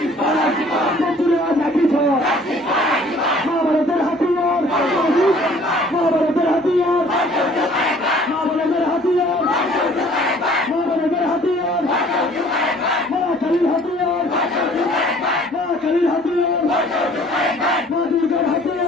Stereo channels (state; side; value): normal; both; correlation 0.54